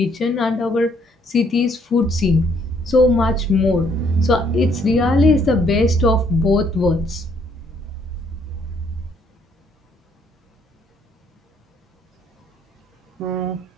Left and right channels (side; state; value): both; normal; correlation 0.66